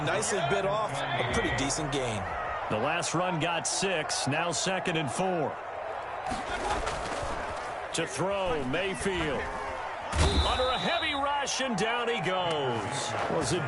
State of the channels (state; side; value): identical; both; correlation 1.00